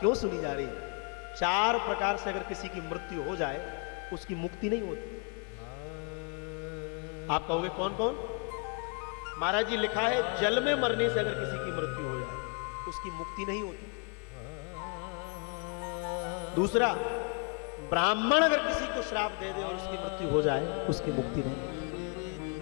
सुनी जा रही है? 4 प्रकार से अगर किसी की मृत्यु हो जाए उसकी मुक्ति नहीं होती। आप कहोगे कौन कौन? महाराज जी लिखा है जल में मरने से अगर किसी की मृत्यु हो जाए उसकी मुक्ति नहीं होती। दूसरा, ब्राह्मण अगर किसी को श्राप दे दे और उसकी मृत्यु हो जाए उसकी मुक्ति नहीं।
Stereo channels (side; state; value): right; quieter; 38.9 dB